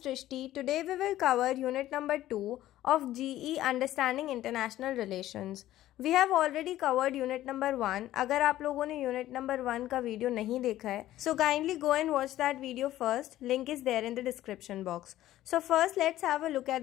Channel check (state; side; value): quieter; right; 14.2 dB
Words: Today we will cover unit number 2 of GE Understanding International Relations. We have already covered unit number 1. अगर आप लोगों ने unit number 1 का video नहीं देखा है, so kindly go and watch that video first. Link is there in the description box. So first let's have a look